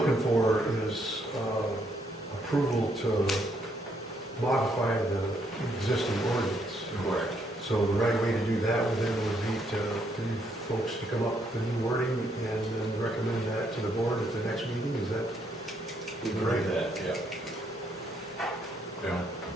for is approval to modify the existing ordinance. Correct. So the right way to do that would then would be for you folks to come up with the new wording and then recommend that to the board at the next meeting, is that? We can do that, yeah. Yeah.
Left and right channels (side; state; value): both; normal; correlation 0.72